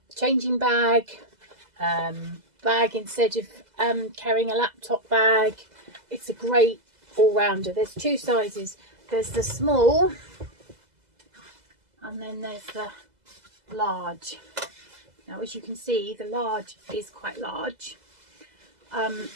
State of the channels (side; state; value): left; late; 2.0 ms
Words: changing bag, instead of carrying a laptop bag. It's a great all-rounder. There's two sizes. There's the small and then there's the large. Now, as you can see, the large is quite large.